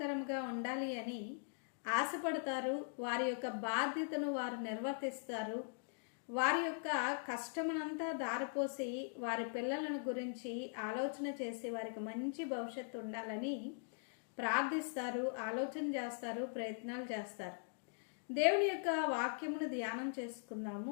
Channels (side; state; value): right; silent; digital silence